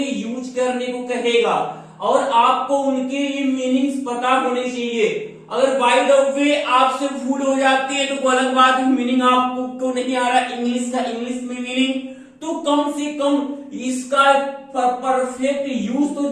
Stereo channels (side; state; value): both; identical; correlation 1.00